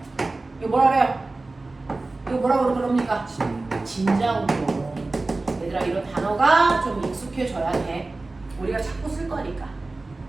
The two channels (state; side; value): quieter; left; 3.3 dB